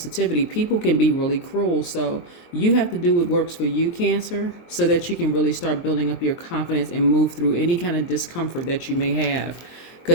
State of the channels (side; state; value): right; late; 23 ms